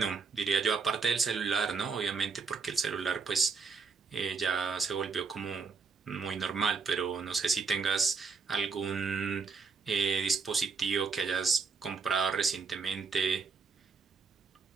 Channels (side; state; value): left; quieter; 5.1 dB